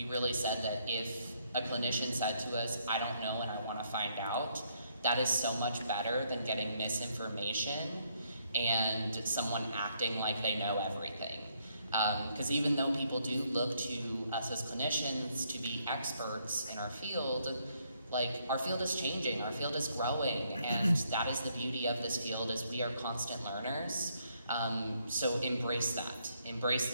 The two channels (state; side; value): inverted; both; correlation -0.72